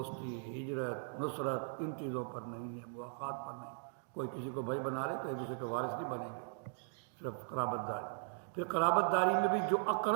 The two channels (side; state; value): left; silent; digital silence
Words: ہجرت، نصرت ان چیزوں پر نہیں ہے، مواخات پر نہیں۔ کوئی کسی کو بھائی بنا لے تو ایک دوسرے کے وارث نہیں بنیں گے، صرف قرابت داری۔ پھر قرابت داری میں بھی جو